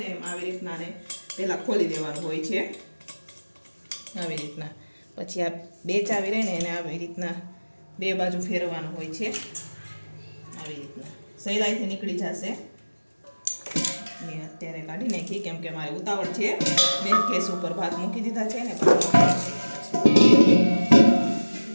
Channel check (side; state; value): both; inverted; correlation -1.00